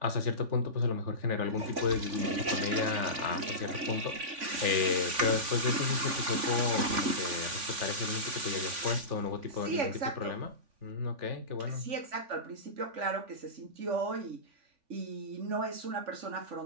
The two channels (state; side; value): late; left; 3.5 ms